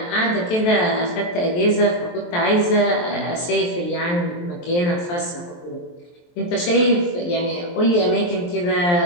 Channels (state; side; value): late; right; 23 ms